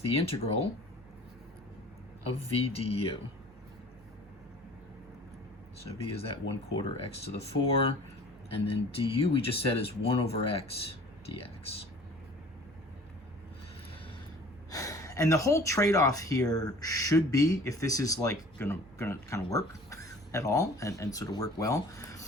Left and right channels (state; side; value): normal; both; correlation 0.47